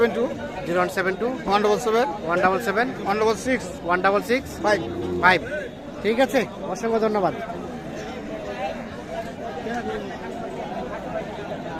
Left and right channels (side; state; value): both; identical; correlation 1.00